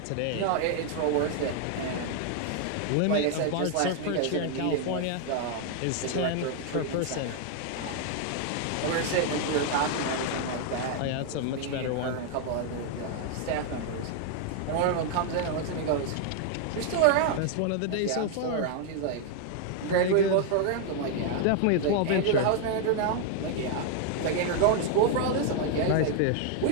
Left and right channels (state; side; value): different; both; correlation 0.00